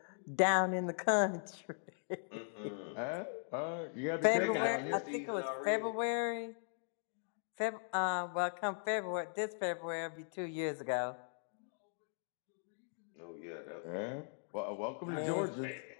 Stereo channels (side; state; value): right; silent; digital silence